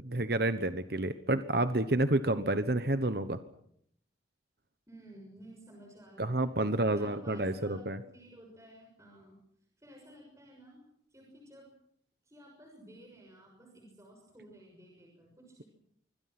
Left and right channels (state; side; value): normal; both; correlation 0.35